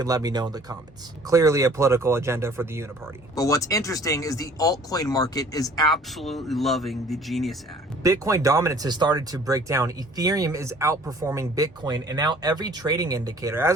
let me know in the comments. Clearly a political agenda for the Uniparty. But what's interesting is the altcoin market is absolutely loving the Genius Act. Bitcoin dominance has started to break down. Ethereum is outperforming Bitcoin, and now every trading indicator.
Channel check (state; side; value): normal; both; correlation 0.53